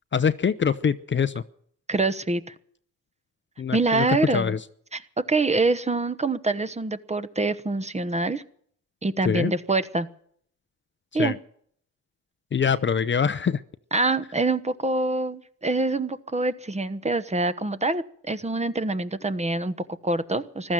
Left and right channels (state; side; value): normal; both; correlation 0.38